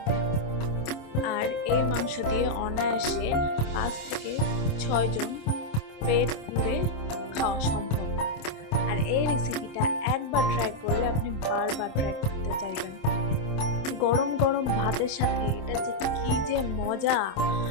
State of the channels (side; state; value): right; late; 26 ms